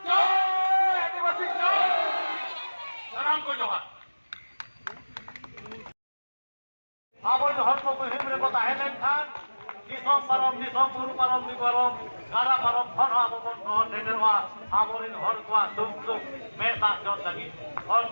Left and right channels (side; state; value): both; inverted; correlation -1.00